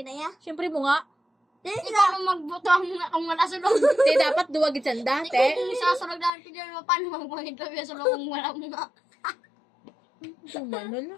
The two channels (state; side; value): drops out; right; at 6.3 s